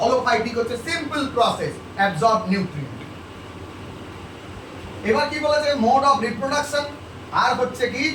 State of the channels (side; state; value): both; identical; correlation 1.00